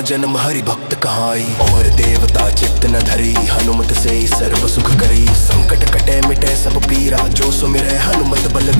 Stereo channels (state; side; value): inverted; both; correlation -1.00